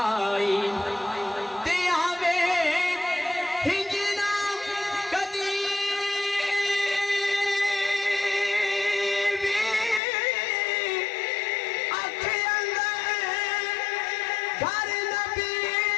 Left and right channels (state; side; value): drops out; right; at 10.0 s